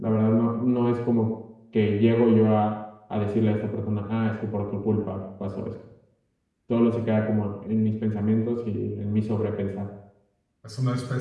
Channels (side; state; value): both; identical; correlation 1.00